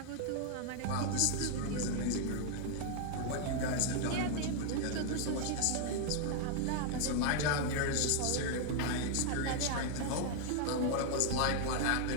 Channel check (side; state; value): both; different; correlation 0.00